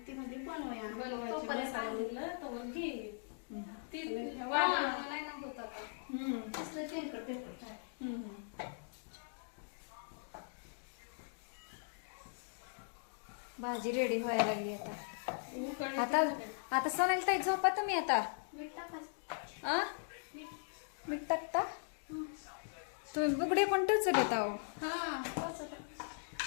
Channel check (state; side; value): silent; right; digital silence